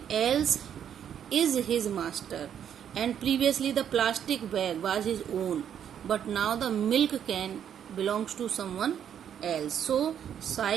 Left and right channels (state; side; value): quieter; left; 9.1 dB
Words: else is his master. And previously the plastic bag was his own, but now the milk can belongs to someone else. So